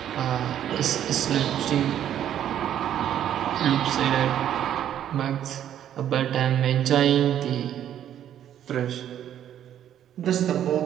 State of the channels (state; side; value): quieter; left; 10.6 dB